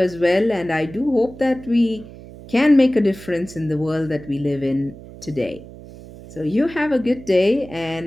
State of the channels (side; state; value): right; noise; hum, 17 dB below the sound